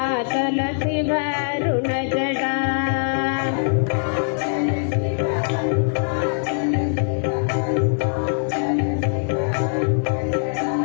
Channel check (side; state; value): right; silent; 57 dB below the other